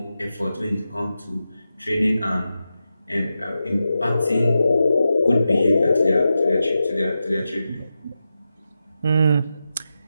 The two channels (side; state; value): both; inverted; correlation -0.90